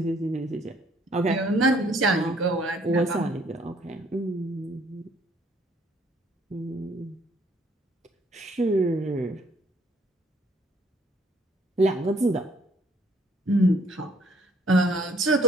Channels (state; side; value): normal; both; correlation 0.63